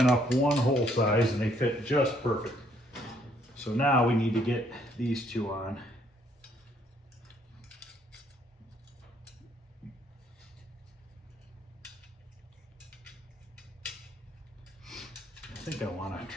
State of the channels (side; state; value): both; normal; correlation 0.67